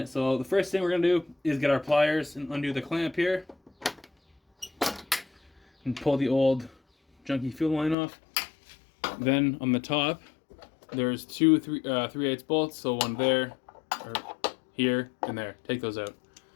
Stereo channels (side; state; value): right; drops out; at 8.0 s